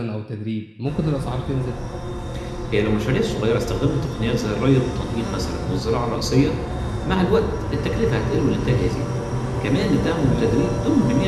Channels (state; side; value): identical; both; correlation 1.00